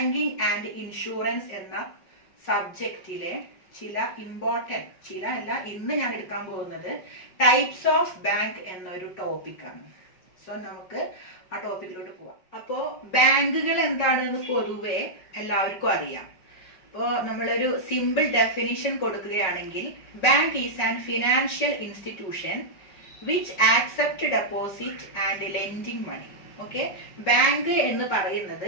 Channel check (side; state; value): right; late; 5.3 ms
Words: ആൻഡ് ഇൻഷുറൻസ് എന്ന സബ്ജക്റ്റിലെ ഇന്ന് ഞാൻ എടുക്കാൻ പോകുന്നത് ടൈപ്സ് ഓഫ് ബാങ്ക് എന്നൊരു ടോപ്പിക്കാണ്. സോ നമുക്ക് ആ ടോപ്പിക്കിലോട്ട് പോവാം. അപ്പോൾ ബാങ്കുകൾ എന്താണെന്ന് പൊതുവെ എല്ലാവർക്കും അറിയാം. അപ്പോൾ നമ്മളൊരു സിമ്പിൾ ഡെഫിനിഷൻ കൊടുക്കുകയാണെങ്കിൽ, bank is an financial institution which accept deposit and lending money. Okay, bank എന്ന് പറയുന്നത്